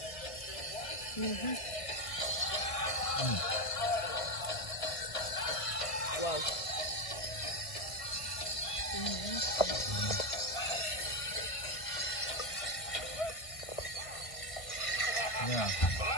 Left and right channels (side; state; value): right; late; 1.5 ms